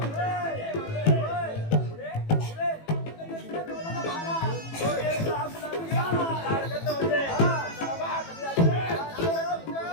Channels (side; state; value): right; late; 18 ms